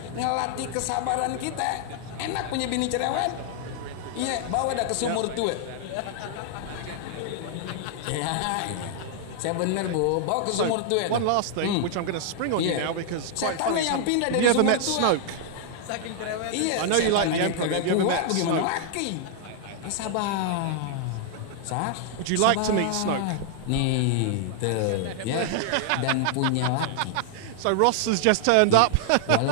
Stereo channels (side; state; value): both; different; correlation 0.00